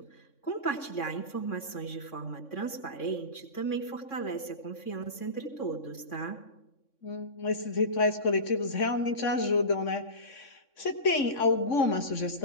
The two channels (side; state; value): right; late; 3.6 ms